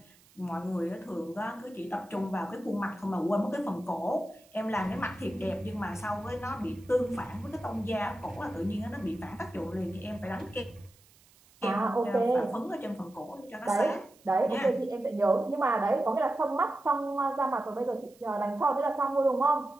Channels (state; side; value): noise; right; hiss, 28 dB below the sound